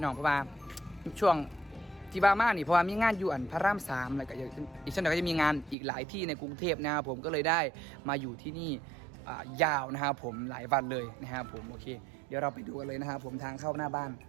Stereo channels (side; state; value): left; drops out; at 5.8 s